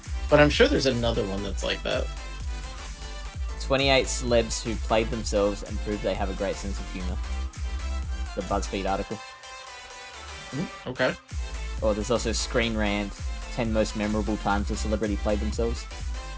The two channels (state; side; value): identical; both; correlation 1.00